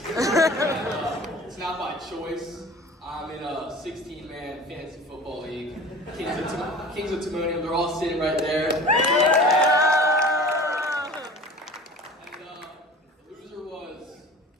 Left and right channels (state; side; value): normal; both; correlation 0.41